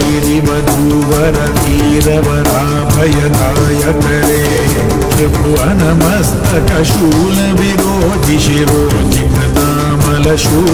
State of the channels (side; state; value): both; identical; correlation 1.00